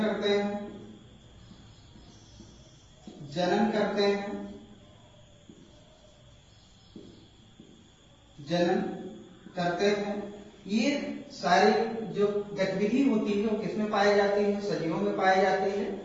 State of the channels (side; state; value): both; identical; correlation 1.00